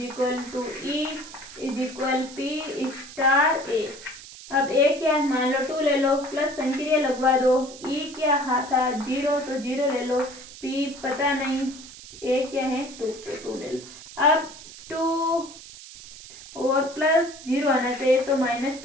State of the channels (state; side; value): noise; right; hiss, 16 dB below the sound